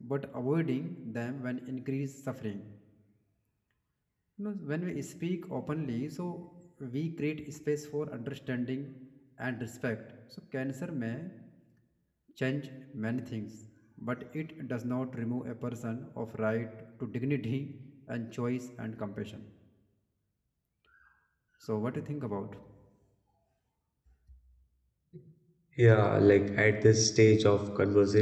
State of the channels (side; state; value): both; identical; correlation 1.00